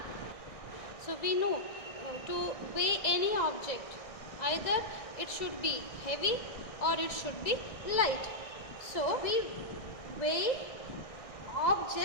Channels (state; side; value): late; right; 1.6 ms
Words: So we know to weigh any object, either it should be heavy or it should be light. So we weigh